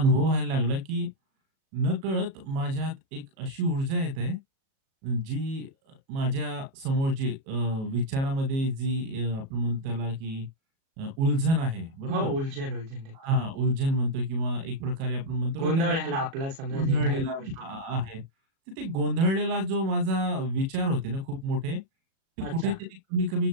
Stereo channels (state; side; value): late; left; 37 ms